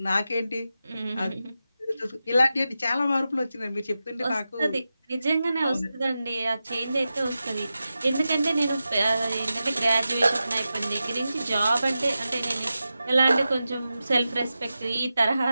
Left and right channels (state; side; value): inverted; both; correlation -0.92